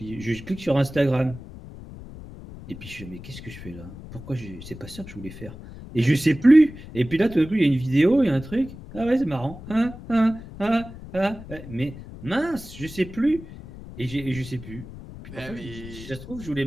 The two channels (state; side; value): noise; left; rumble, 14 dB below the sound